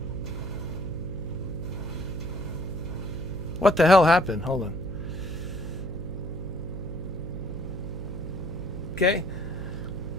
What the hell happened? Hold on. Okay.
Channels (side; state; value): right; noise; hum, 8 dB below the sound